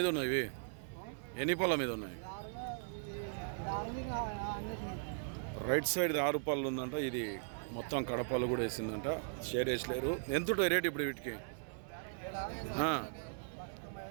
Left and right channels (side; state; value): left; silent; 52 dB below the other